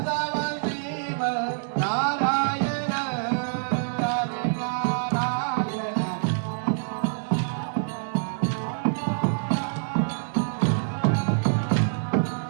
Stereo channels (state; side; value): silent; left; digital silence